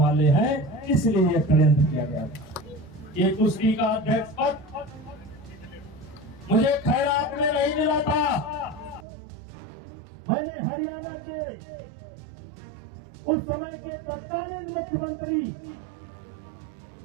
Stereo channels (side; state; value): left; drops out; at 9.1 s